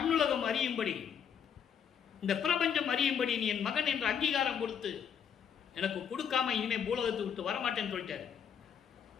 அறியும்படி, இந்த பிரபஞ்சம் அறியும்படி நீ என் மகன் என்ற அங்கீகாரம் கொடுத்து எனக்கு கொடுக்காம இனிமே பூலோகத்தை விட்டு வரமாட்டேன்னு சொல்லிட்டாரு.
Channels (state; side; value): quieter; right; 7.9 dB